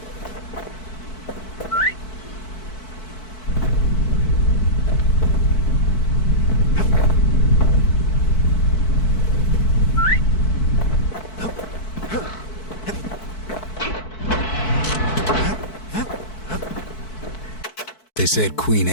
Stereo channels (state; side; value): late; right; 4.6 ms